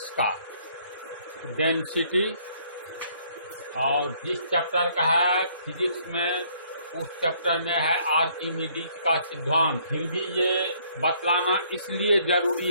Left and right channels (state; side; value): inverted; both; correlation -0.64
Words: का, डेंसिटी। और जिस चैप्टर का है फिजिक्स में, उस चैप्टर में है आर्किमिडीज का सिद्धांत। फिर भी ये बतलाना इसलिए